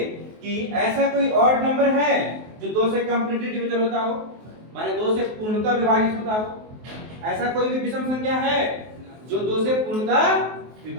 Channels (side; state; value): left; late; 23 ms